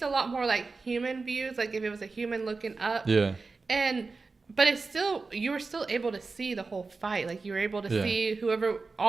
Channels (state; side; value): quieter; left; 4.1 dB